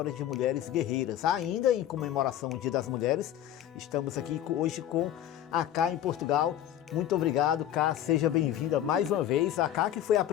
de mulheres guerreiras. Ainda em comemoração ao Dia das Mulheres, estamos aqui hoje com a Ká em Portugal. Muito obrigado, Ká, seja bem-vinda mais uma vez. A Ká que foi a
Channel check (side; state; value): right; quieter; 11.5 dB